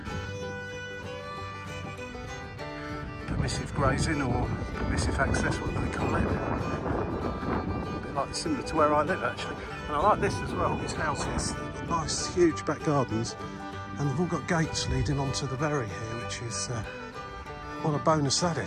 Permissive grazing or permissive access, what do they call it? A bit like similar to where I live actually. And I like this as well, these houses. They've got nice huge back gardens, and they've all got gates leading onto the berry here, which is what a bonus that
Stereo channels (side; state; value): both; identical; correlation 1.00